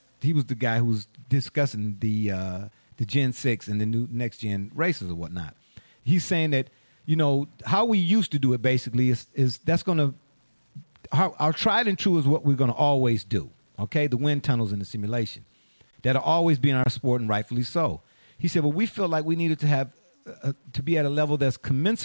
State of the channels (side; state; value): both; inverted; correlation -1.00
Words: he was the guy who was discussing the Gen 6 and the new next gen races or whatnot. He's saying that, how we used to do it basically is that's going to, our tried and true is what we're going to always do, okay? The wind tunnels and the simulation. That'll always be in our sport, and rightfully so. He said, well, we feel like we needed to have to be at a level that's